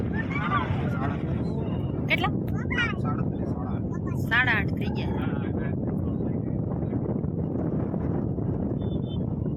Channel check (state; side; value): identical; both; correlation 1.00